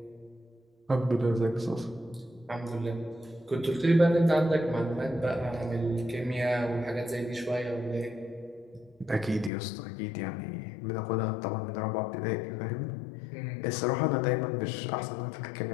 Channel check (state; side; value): drops out; right; at 9.5 s